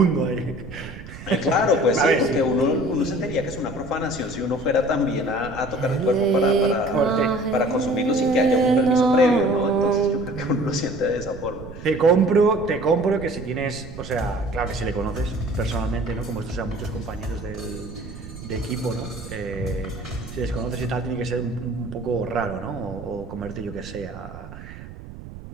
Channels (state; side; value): noise; right; rumble, 14 dB below the sound